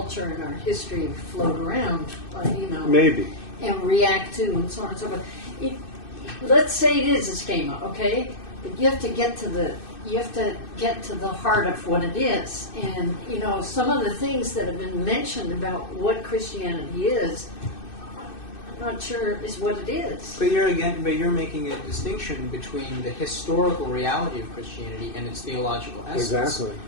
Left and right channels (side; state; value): right; late; 2.6 ms